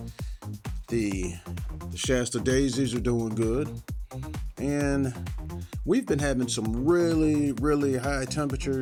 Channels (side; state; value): both; identical; correlation 1.00